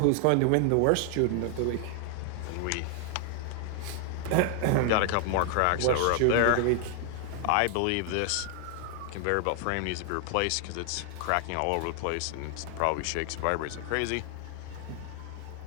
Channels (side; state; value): both; different; correlation 0.00